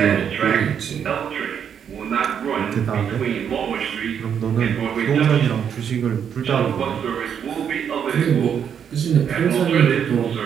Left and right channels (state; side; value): quieter; left; 8.0 dB